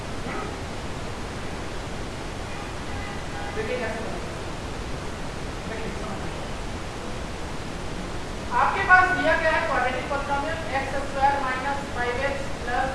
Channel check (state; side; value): identical; both; correlation 1.00